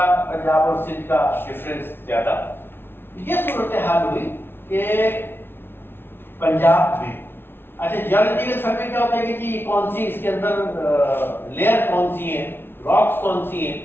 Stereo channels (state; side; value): late; right; 0.11 ms